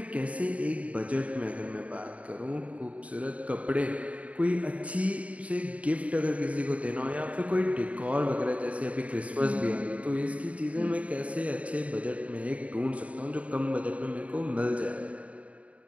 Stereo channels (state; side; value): late; left; 0.067 ms